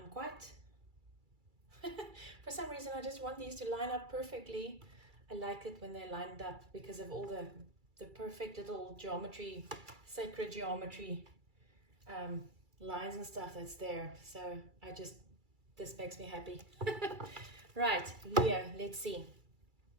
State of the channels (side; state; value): left; late; 2.3 ms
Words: quite for some reason I just want these to line up perfectly. I like it when they're lined up because of all the perfect little geometry, sacred geometry lines and stuff that's there. So this makes me happy. Right, Leo, let's see.